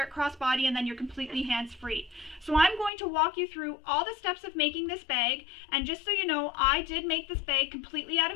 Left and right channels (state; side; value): drops out; right; at 2.9 s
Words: it crossbody, and then you're completely hands-free. So I'm going to walk you through all the steps of making this bag, and just so you know, I did make this bag completely out